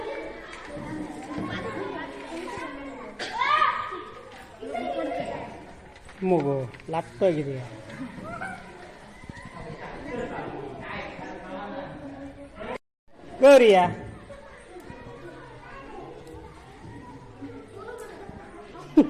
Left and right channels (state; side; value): identical; both; correlation 1.00